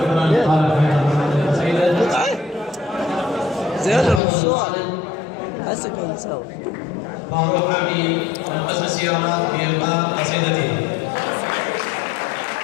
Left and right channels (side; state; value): right; drops out; at 4.2 s